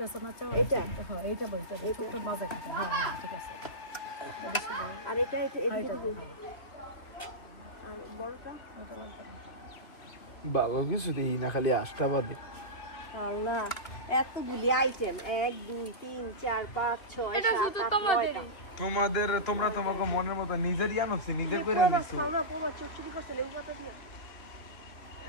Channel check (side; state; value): right; late; 3.3 ms